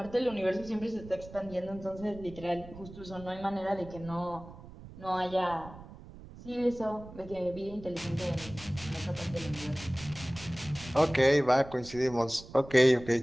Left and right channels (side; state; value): right; noise; rumble, 16 dB below the sound